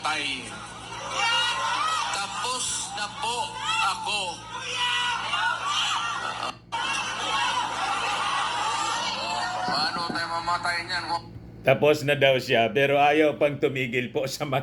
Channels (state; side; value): identical; both; correlation 1.00